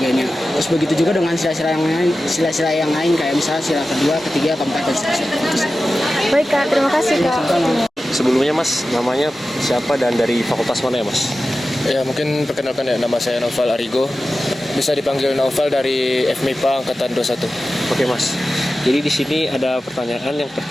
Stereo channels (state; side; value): normal; both; correlation 0.94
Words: Terus begitu juga dengan sila-sila yang lain kayak misalnya sila kedua, ketiga, keempat dan seterusnya. Baik Kak, terima kasih Kak. Sebelumnya Mas, namanya siapa dan dari fakultas mana ya Mas? Ya, mungkin perkenalkan ya, nama saya Noval Arigo. Bisa dipanggil Noval dari FMIPA Angkatan 21. Oke Mas, jadi di sini ada pertanyaan yang